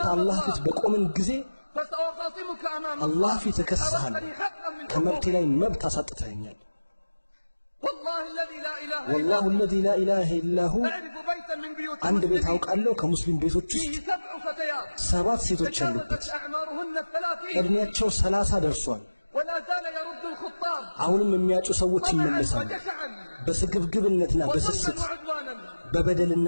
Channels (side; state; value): both; inverted; correlation -1.00